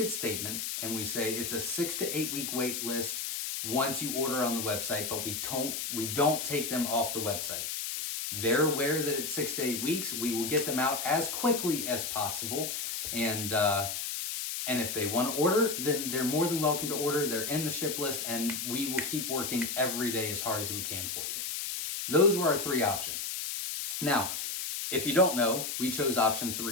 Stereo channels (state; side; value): noise; left; hiss, 3 dB below the sound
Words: statement and we say it's a 6 to 8 week wait list once you order on the website, but we don't take them off the website. They're aware that it's 6 to 8 weeks. We will get them out as quickly as possible. And if they want to order, then they're more than welcome to order. They're in the ship list, and we will keep working every day as hard as we can for you. Those were our 3 options. Now, if you don't know, we chose option